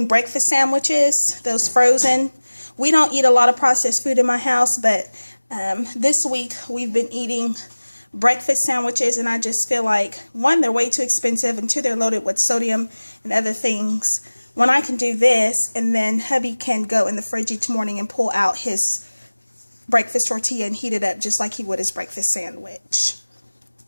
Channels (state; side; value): inverted; both; correlation -1.00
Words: breakfast sandwiches, those frozen. We don't eat a lot of processed food in my house, but this week we've been eating breakfast sandwiches, and I just feel like, one, they're way too expensive, and two, they're loaded with sodium and other things. When I can do this, and then hubby can go in the fridge each morning and pull out his breakfast tortilla and heat it up just like he would his breakfast sandwich.